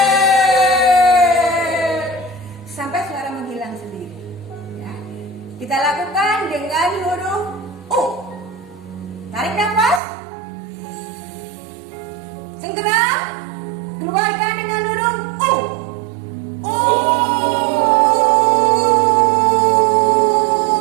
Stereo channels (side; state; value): left; drops out; at 10.0 s